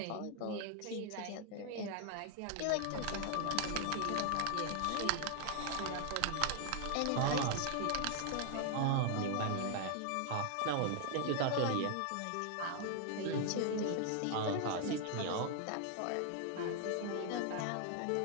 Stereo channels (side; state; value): both; different; correlation 0.00